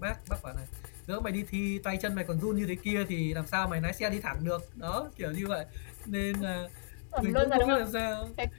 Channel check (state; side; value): silent; right; 55 dB below the other